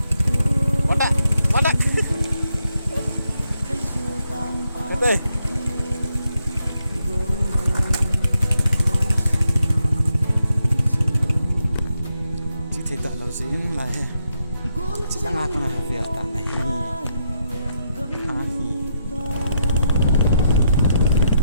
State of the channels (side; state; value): both; inverted; correlation -0.80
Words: bắt đấy cái đây chỉ thấy tạo lâu dính là he chỉ đang ngạc mà việc cả này